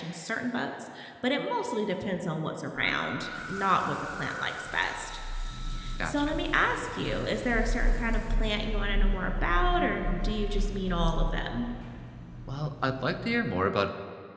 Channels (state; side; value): identical; both; correlation 1.00